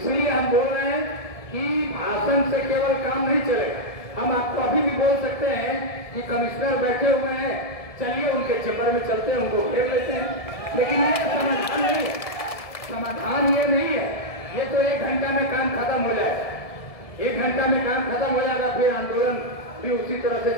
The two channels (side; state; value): right; late; 1.7 ms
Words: हम बोल रहे हैं कि भाषण से केवल काम नहीं चलेगा। हम आपको अभी भी बोल सकते हैं कि कमिश्नर बैठे हुए हैं, चलिए उनके चैम्बर में चलते हैं, उनको घेर लेते हैं, लेकिन ये समाधान नहीं है। समाधान ये नहीं है। ये तो 1 घंटा में काम खत्म हो जाएगा, 1 घंटा में काम खत्म हो जाएगा, फिर आंदोलन भी उसी तरह से